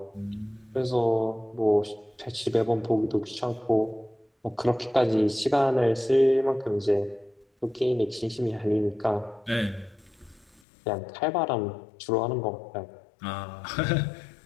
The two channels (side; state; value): right; drops out; at 10.6 s